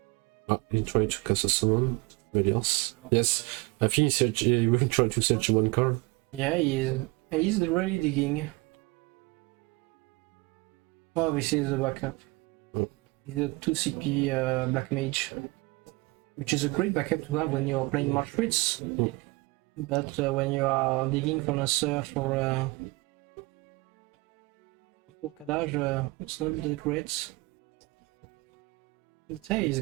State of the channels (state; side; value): quieter; left; 23.9 dB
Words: He tried to cast a summon. Belias. Yes, I think he will try to search 1 card. Yeah, he's really digging. Oh, this is a backup. He's a 2CP Black Mage, which is a great backup to have when you're playing March Fritz. But when you are digging from a surf for Kadaj, it's not that great. But hey, he's